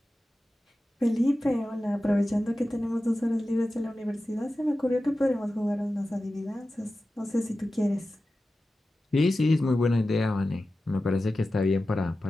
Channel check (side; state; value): both; normal; correlation 0.94